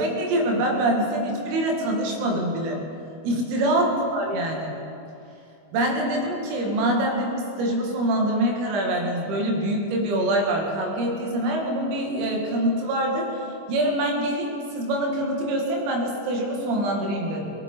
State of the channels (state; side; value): late; left; 25 ms